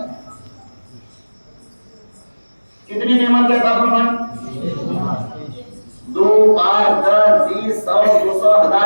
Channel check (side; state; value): both; inverted; correlation -1.00